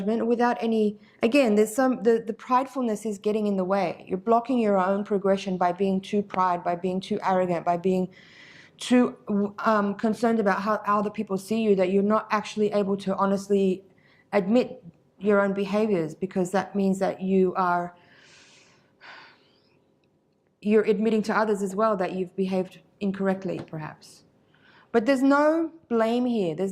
without any, again, there's the pridefulness is getting in the way. You're blocking your own progression by being too by being too arrogant, by being too concerned about how other people see you, that you're not actually able to honestly admit your own behaviors, because that means that you're admitting to others as well that you've behaved incorrectly, perhaps. But there's no blame here.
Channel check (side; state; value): both; identical; correlation 1.00